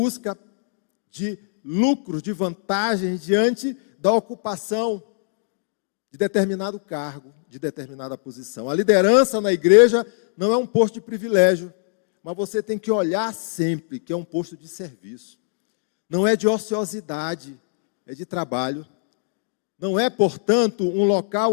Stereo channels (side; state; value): right; silent; digital silence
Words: de lucros, de vantagens diante da ocupação de determinado cargo, de determinada posição. A liderança na igreja não é um posto de privilégio, mas você tem que olhar sempre que é um posto de serviço. Não é de ociosidade, é de trabalho. Não é, portanto, um local